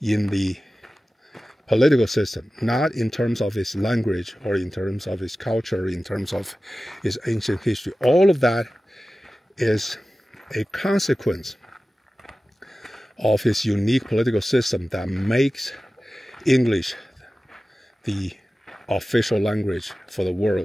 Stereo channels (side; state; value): both; normal; correlation 0.96